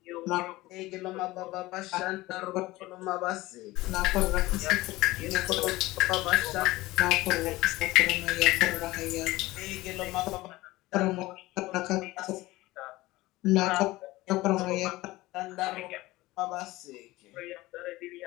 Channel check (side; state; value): right; quieter; 19.0 dB